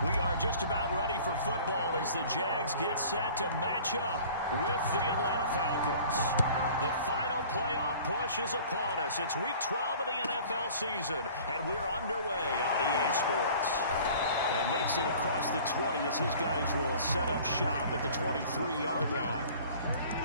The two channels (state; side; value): inverted; both; correlation -0.47